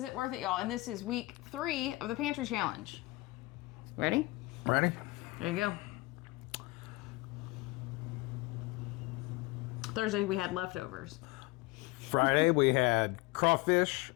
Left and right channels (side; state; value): right; quieter; 21.8 dB